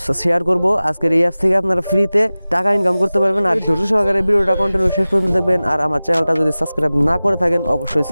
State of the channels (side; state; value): both; inverted; correlation -0.98